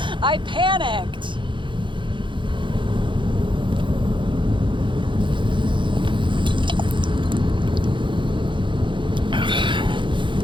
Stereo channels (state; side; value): late; left; 0.23 ms